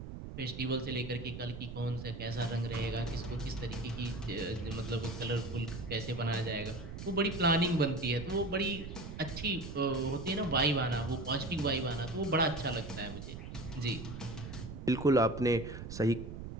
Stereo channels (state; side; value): noise; right; rumble, 9 dB below the sound